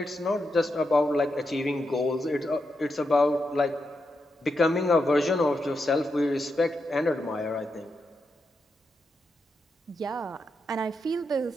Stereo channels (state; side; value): normal; both; correlation 0.85